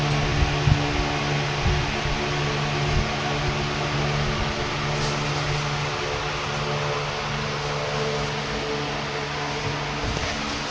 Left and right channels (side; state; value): both; identical; correlation 1.00